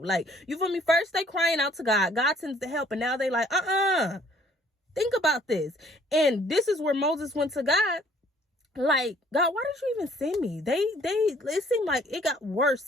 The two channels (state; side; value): normal; both; correlation 0.59